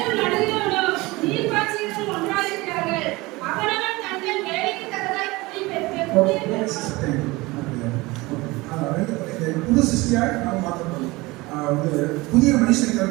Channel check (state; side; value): quieter; left; 22.1 dB